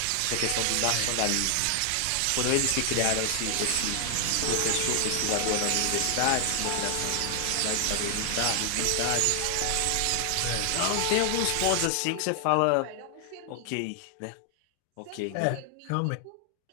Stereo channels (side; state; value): both; different; correlation 0.00